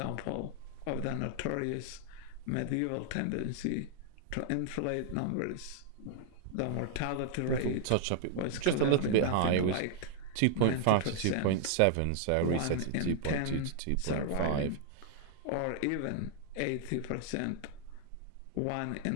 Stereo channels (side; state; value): both; different; correlation 0.00